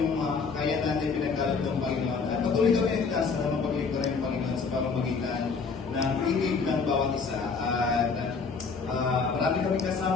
mga kakayanan na pinagkaloob ng Panginoon. At patuloy kami nagkasa na mapaglingkuran ng Panginoon sa pamamagitan ng pigig ng bawat isa. At marami kami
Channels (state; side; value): quieter; right; 5.0 dB